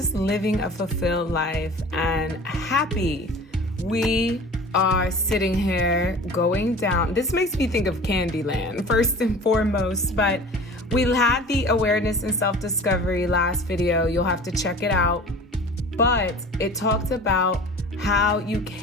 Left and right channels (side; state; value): both; normal; correlation 0.41